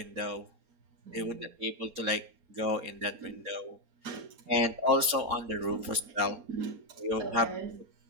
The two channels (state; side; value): late; left; 4.3 ms